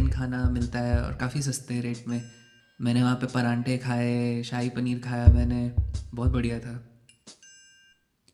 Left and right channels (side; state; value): both; identical; correlation 1.00